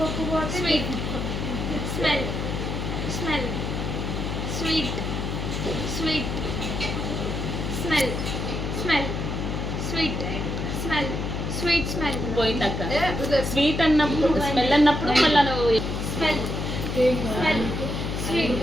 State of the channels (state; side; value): noise; left; hum, 3 dB below the sound